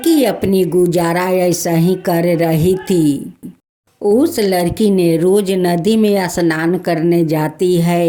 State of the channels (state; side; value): identical; both; correlation 1.00